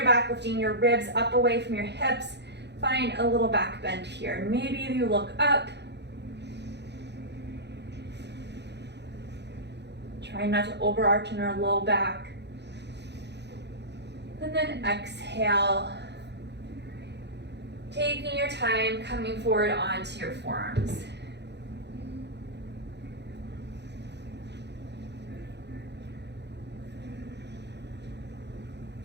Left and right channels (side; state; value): left; late; 0.50 ms